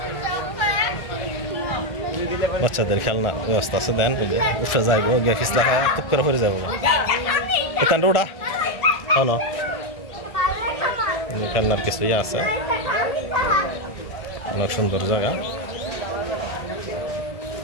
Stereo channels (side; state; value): right; late; 1.7 ms